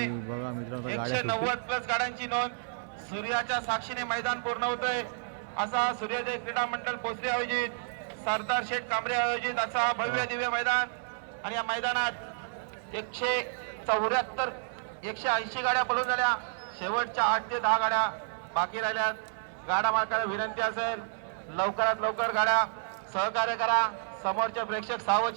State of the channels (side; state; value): left; silent; 58 dB below the other